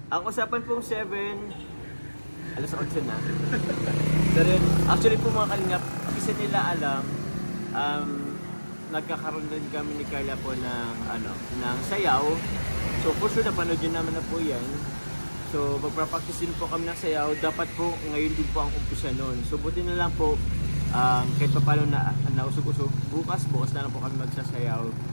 Ang usapan pong 7, alas 8 na. Pero yun, actually po mga Kalingap, kasi nila alam, nagkakaroon din kami ni Carla po ng sayaw. So for sure, napanood yun naman na po yan. So magpa-practice din po kami ng sayaw. Dapat po ngayon din po ang umpisa nun. So buti na lang po, kahit pa paano na nausog-usog, bukas na lang po kami magsasayaw.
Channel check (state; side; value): inverted; both; correlation -1.00